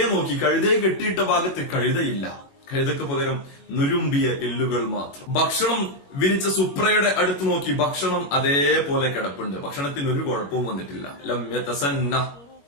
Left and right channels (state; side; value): late; right; 21 ms